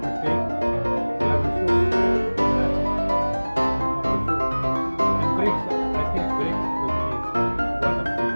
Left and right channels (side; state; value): both; inverted; correlation -1.00